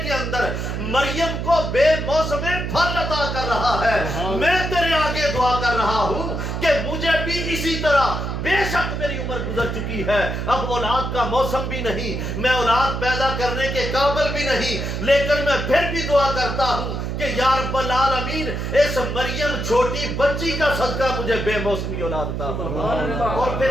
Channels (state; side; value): noise; right; hum, 3 dB below the sound